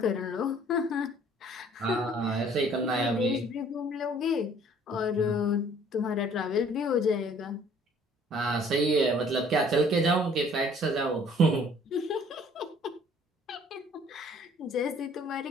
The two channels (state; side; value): normal; both; correlation 0.56